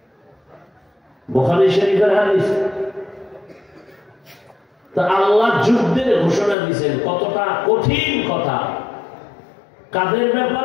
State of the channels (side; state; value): right; drops out; at 6.6 s